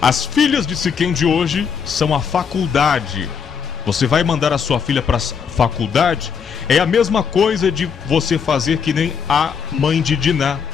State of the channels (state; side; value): quieter; right; 6.7 dB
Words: filhas de Siquém de hoje são a faculdade. Você vai mandar a sua filha para a faculdade? É a mesma coisa de você fazer que nem a mãe de Diná.